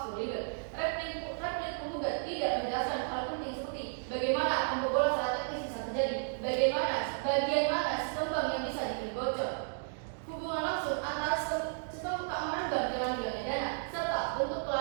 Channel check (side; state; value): left; silent; digital silence